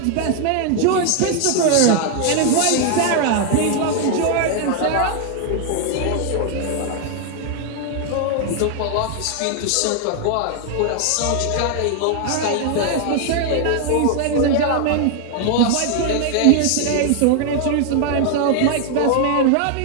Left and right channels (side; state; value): both; different; correlation 0.00